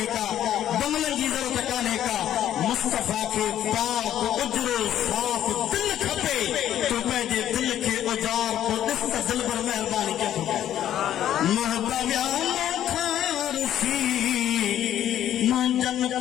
का बंगलन की जरूरत काने का मुस्तफा के पाक उजरो साफ दिल खपे तो पंहिंजे दिल के उजार को ॾिस त दिल पर मेहरबानी कयो महबूबा मुंहिंजनि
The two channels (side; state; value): right; quieter; 11.4 dB